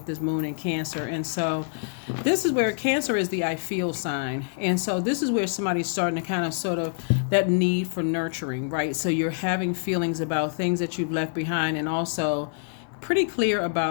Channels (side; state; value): right; silent; 61 dB below the other